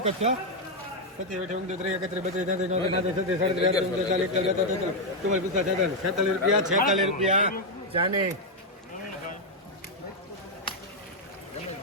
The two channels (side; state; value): both; normal; correlation 0.01